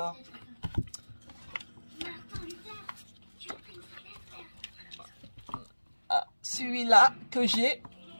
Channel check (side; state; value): both; inverted; correlation -1.00